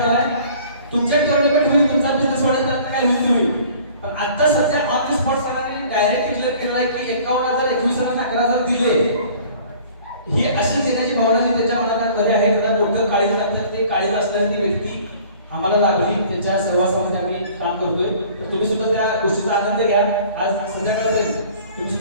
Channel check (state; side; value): inverted; both; correlation -0.50